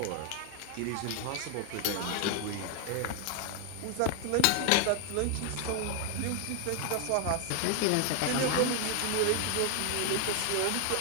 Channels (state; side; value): different; both; correlation 0.01